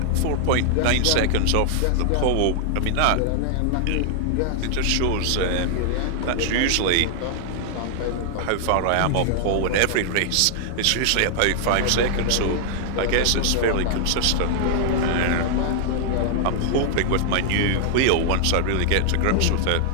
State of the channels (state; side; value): different; both; correlation 0.00